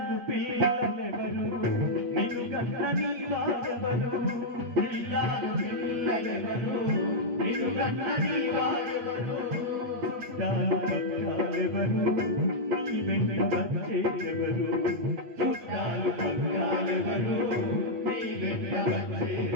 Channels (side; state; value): left; late; 8.4 ms